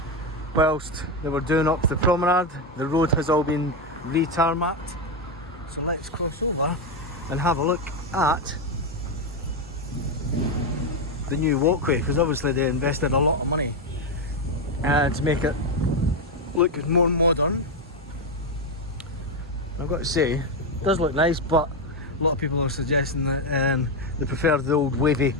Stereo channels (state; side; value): normal; both; correlation 0.07